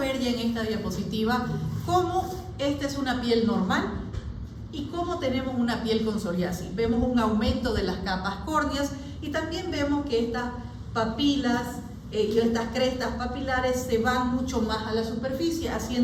ya en esta diapositiva cómo esta es una piel normal y cómo tenemos una piel con psoriasis. Vemos un aumento de las capas córneas y también vemos que estas papilas y estas crestas papilares se van mucho más a la superficie,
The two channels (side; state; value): both; identical; correlation 1.00